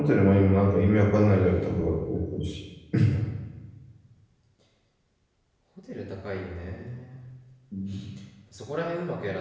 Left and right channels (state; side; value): identical; both; correlation 1.00